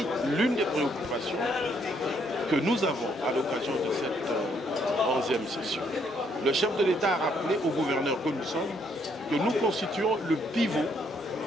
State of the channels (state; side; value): normal; both; correlation 0.70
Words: l'une des préoccupations que nous avons à l'occasion de cette 11e session. Le chef de l'État a rappelé aux gouverneurs que nous sommes que nous constituons le pivot